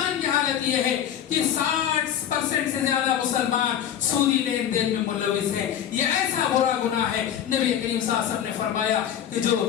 کی حالت یہ ہے کہ 60% سے زیادہ مسلمان سودی لین دین میں ملوث ہیں. یہ ایسا برا گناہ ہے, نبی کریم صلی اللہ علیہ وسلم نے فرمایا کہ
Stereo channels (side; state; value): right; quieter; 9.8 dB